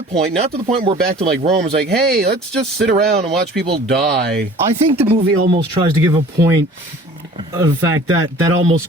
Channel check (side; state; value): both; normal; correlation 0.47